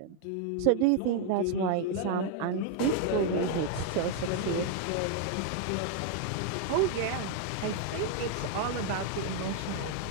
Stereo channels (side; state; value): both; different; correlation 0.01